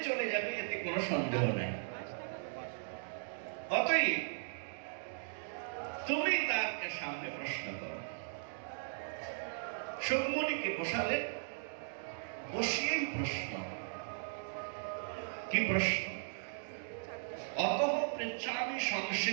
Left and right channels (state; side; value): silent; left; digital silence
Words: চলে যাবে, এতে কোনো সন্দেহ নাই। অতএব তুমি তাকে সামনে প্রশ্ন করো। সুকমণিকে বসালেন, বসিয়েই প্রশ্ন। কি প্রশ্ন? অতঃ পৃচ্ছামি